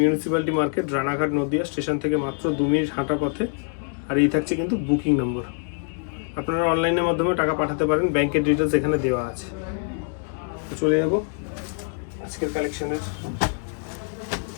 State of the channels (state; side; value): silent; right; 56 dB below the other